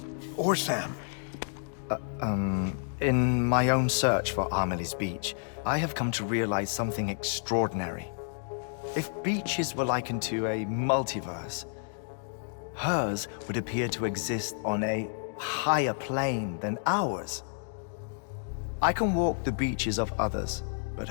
or Sam. In my own search for Amelie's Beach, I have come to realize something extraordinary. If beaches were likened to a multiverse, hers would appear to exist on a higher plane than ours. I can walk the beaches of others, but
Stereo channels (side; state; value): right; silent; digital silence